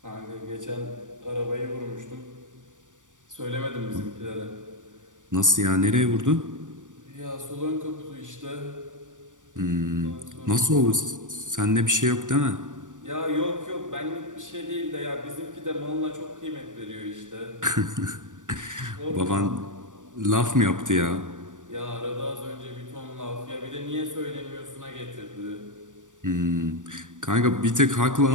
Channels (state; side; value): late; left; 0.87 ms